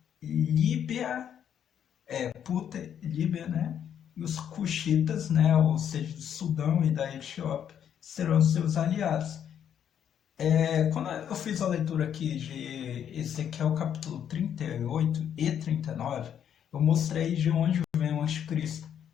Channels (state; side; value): quieter; right; 9.1 dB